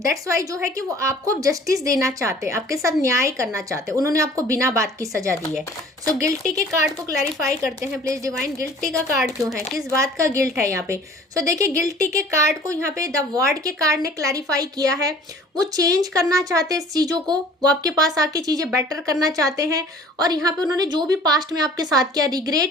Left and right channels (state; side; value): normal; both; correlation 0.50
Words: दैट्स वाई जो है कि वो आपको जस्टिस देना चाहते हैं, आपके साथ न्याय करना चाहते हैं। उन्होंने आपको बिना बात की सजा दी है। सो गिल्टी के कार्ड को क्लैरिफाई करते हैं प्लीज डिवाइन। गिल्टी का कार्ड क्यों है, किस बात का गिल्ट है यहाँ पे। सो देखिए गिल्टी के कार्ड को यहाँ पे द वर्ड के कार्ड ने क्लैरिफाई किया है। वो चेंज करना चाहते हैं इस चीजों को, वो आपके पास आके चीजें बेटर करना चाहते हैं और यहाँ पे उन्होंने जो भी पास्ट में आपके साथ किया